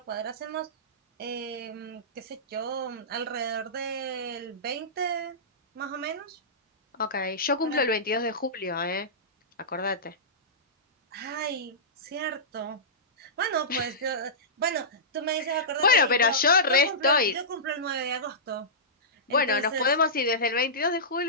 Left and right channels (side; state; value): both; normal; correlation -0.18